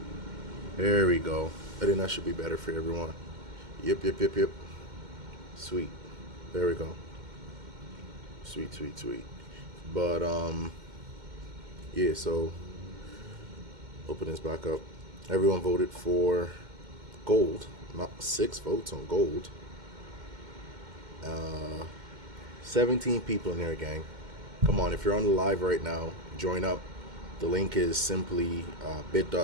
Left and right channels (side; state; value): left; late; 2.1 ms